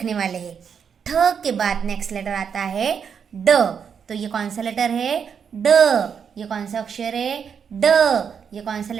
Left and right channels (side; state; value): left; quieter; 7.0 dB